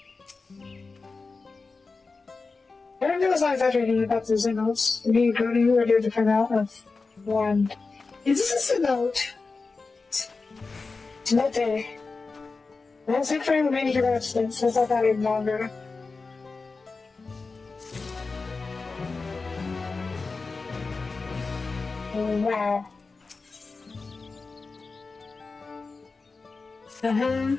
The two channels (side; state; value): right; quieter; 4.1 dB